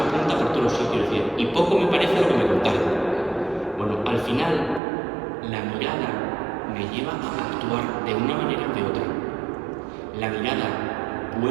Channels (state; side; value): drops out; left; at 4.8 s